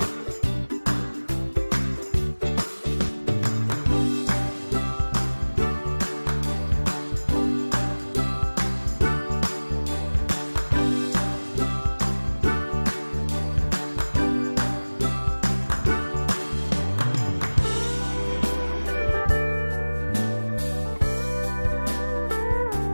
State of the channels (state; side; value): inverted; both; correlation -1.00